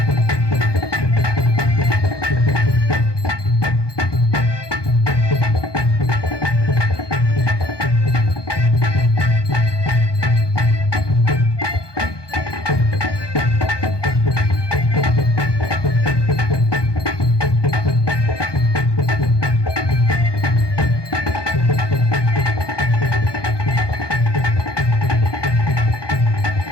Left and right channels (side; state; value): right; late; 1.2 ms